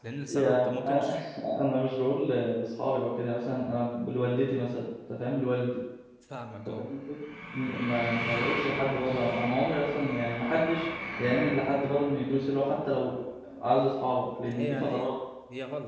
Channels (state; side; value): identical; both; correlation 1.00